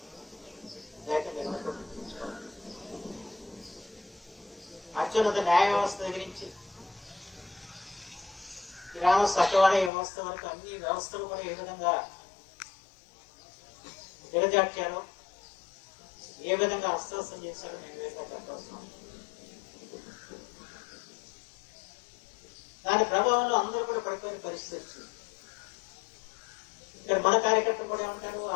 అత్యున్నత న్యాయ వ్యవస్థ దగ్గర నుంచి గ్రామ సచివాలయ వ్యవస్థ వరకు అన్ని వ్యవస్థలు కూడా ఏ విధంగా దిగజార్చారో, ఏ విధంగా అస్త్రస్తం చేశారో నేను వేరుగా చెప్పాల్సిన దాని ప్రభావంలో అందరూ కూడా పడిపోయిన పరిస్థితి వచ్చింది. ఇక్కడ మన కార్యకర్తలు కూడా ఏమంటారు,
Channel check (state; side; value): drops out; right; at 9.9 s